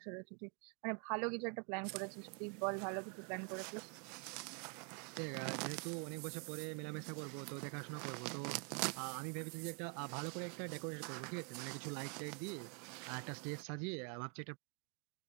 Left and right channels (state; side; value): quieter; left; 38.1 dB